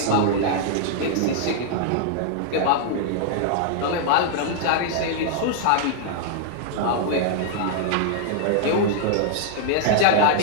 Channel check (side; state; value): both; different; correlation -0.01